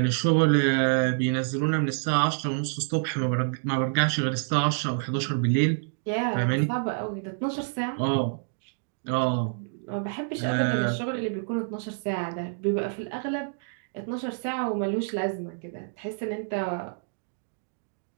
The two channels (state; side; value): silent; left; digital silence